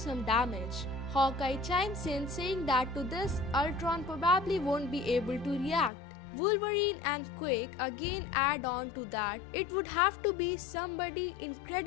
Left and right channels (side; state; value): right; drops out; at 5.9 s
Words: damage. Hawkeye chimes in, saying that to this Ultron probably won't be able to react. Wolverine and Quick again add on to that it would have to be somebody